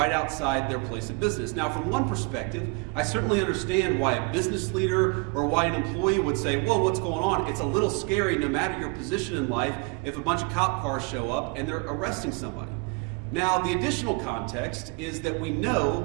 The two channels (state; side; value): quieter; left; 29.9 dB